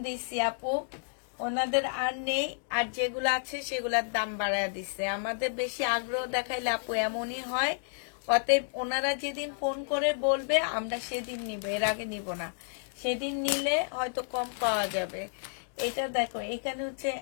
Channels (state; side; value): silent; right; digital silence